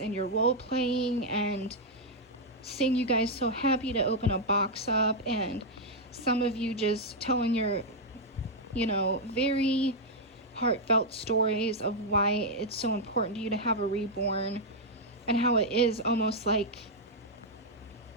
and your role playing and seeing you guys so happy to open a box up, and some of you just telling your, you know, very heartfelt stories of why it's so important to you to have a reborn and how it is almost like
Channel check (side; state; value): both; normal; correlation -0.02